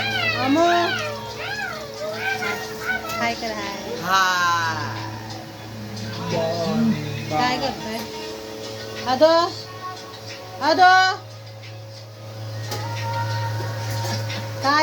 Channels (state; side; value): identical; both; correlation 1.00